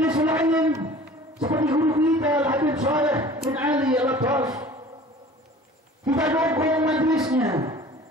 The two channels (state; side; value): normal; both; correlation 0.45